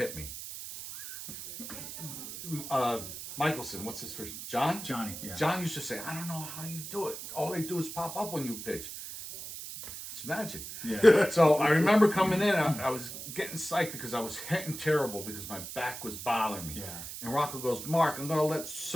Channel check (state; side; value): noise; right; hiss, 9 dB below the sound